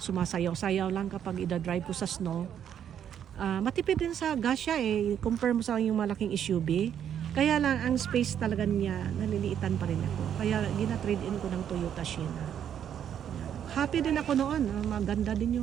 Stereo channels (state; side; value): quieter; left; 9.3 dB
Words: lang kapag ida-drive ko sa snow. Matipid din sa gas siya eh. Compare mo sa yung malaking SUV. Kaya lang ang space talaga niya, naliliitan pa rin ako. Kaya gina-trade in ko ng Toyota Sienna. Happy din ako noon. Maganda din